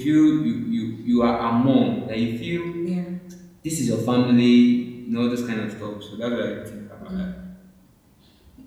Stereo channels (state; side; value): identical; both; correlation 1.00